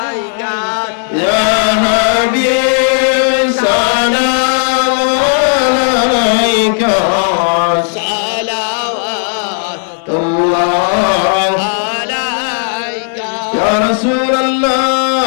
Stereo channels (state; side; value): silent; right; digital silence